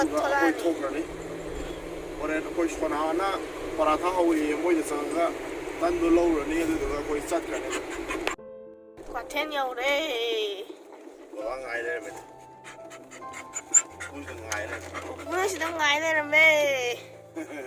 khơi thâu ra ní, rồi khơi cho nó na. Para thang hoi moi de sang ga tan do lo ro ni de ga koi sat ka ne kwa ten yo de wa ngai de me kun de ngai de kun si dang ngai de me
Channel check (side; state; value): both; identical; correlation 1.00